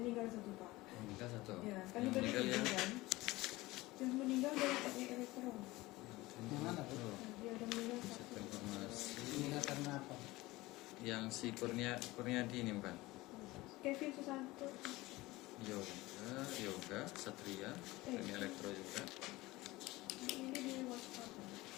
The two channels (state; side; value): quieter; right; 19.8 dB